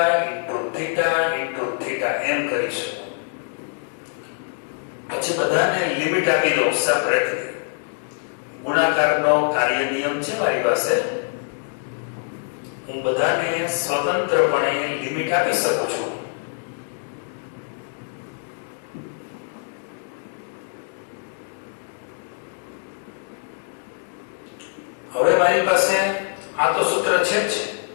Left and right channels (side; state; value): right; silent; digital silence